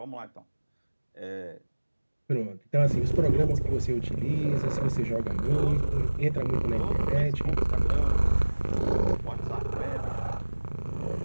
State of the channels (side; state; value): both; inverted; correlation -1.00